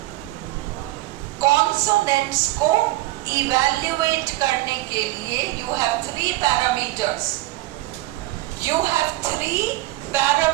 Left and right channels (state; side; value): quieter; left; 18.1 dB